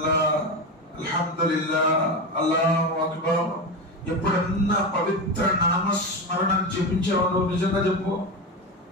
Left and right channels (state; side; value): normal; both; correlation 0.19